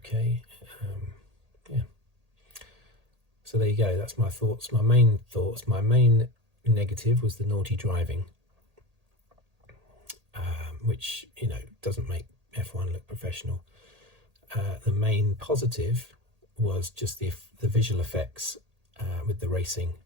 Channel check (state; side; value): late; left; 1.8 ms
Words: Yeah. So there you go. That's my thoughts. My main negative was the naughty driving, which, you know, doesn't make F1 look professional. The main positive was just the visual effects with the racing